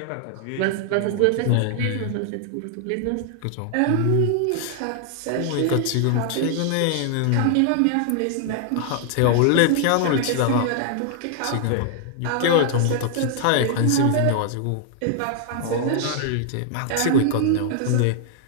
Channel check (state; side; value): different; both; correlation 0.00